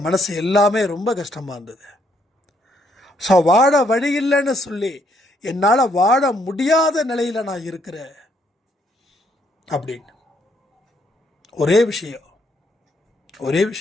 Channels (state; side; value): normal; both; correlation 0.71